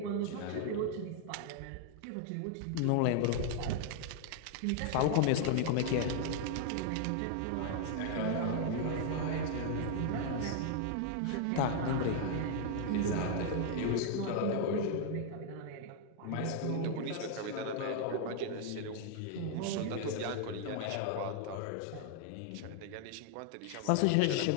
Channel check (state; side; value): different; both; correlation 0.00